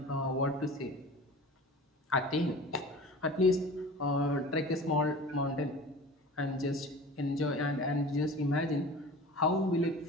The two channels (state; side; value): normal; both; correlation 0.38